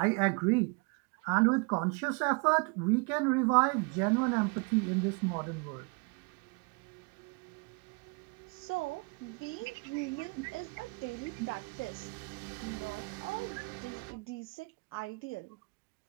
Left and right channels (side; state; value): left; quieter; 30.9 dB